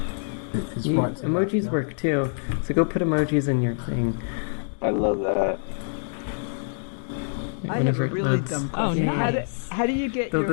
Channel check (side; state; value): right; silent; digital silence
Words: It's right emojis work too, so go put emojis in your thing. I love that. I have a really dumb question. How do you get